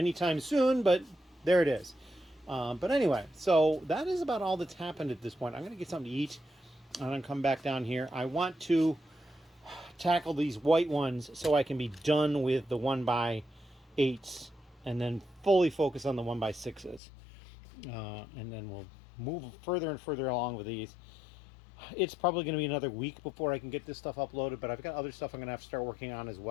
soon, but there it is. But anyway, so that is about all that's happened at this point. I'm going to get something to eat, and I'm going to come back down here. I want to tackle these white ones so I can be done with the 1x8s and then fully focus on the 1x6s. And then we'll move further and further along with these. It's probably going to be another week before I can get this stuff uploaded, but I've got other stuff I'm going to have to start working on as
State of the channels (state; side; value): drops out; right; at 17.0 s